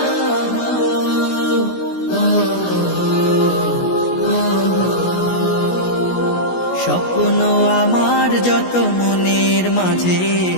স্বপ্ন আমার যত মনের মাঝে,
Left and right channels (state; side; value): late; right; 16 ms